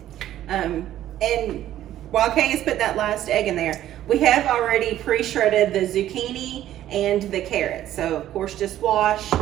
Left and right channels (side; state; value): left; quieter; 12.6 dB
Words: And while Kay has put that last egg in there, we have already pre-shredded the zucchini and the carrots. So of course, just wash